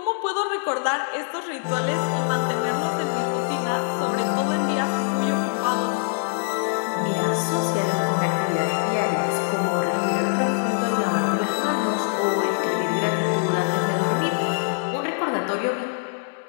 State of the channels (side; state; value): right; silent; digital silence